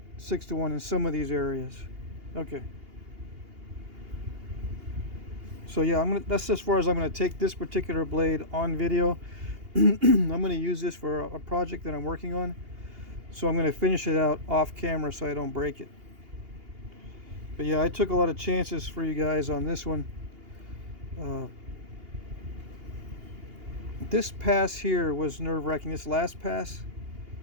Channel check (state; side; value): late; left; 2.8 ms